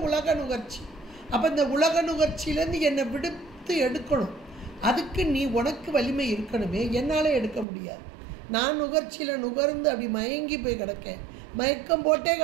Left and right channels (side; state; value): left; drops out; at 7.7 s